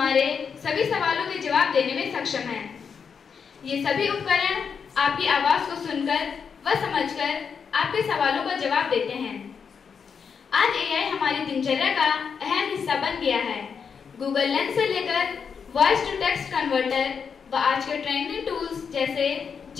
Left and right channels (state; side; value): quieter; right; 6.4 dB